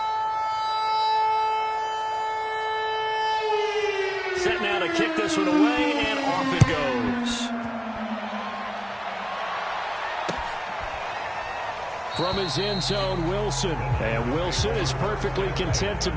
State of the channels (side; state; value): both; identical; correlation 1.00